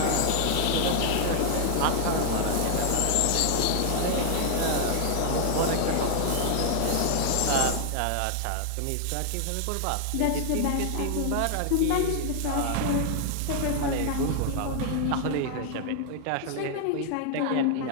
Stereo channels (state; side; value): different; both; correlation 0.00